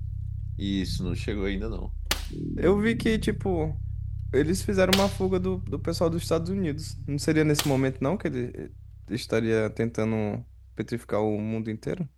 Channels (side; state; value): both; identical; correlation 1.00